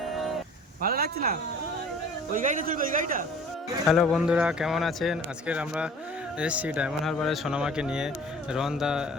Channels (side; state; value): both; normal; correlation 0.48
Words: ভালো লাগছে না? ওই গাড়িটা চলবে, ওই গাড়িটা। হ্যালো বন্ধুরা, কেমন আছেন? আজকের আমরা এসেছি ডায়মন্ড হারবারে সোনামাকে নিয়ে। রোহনদা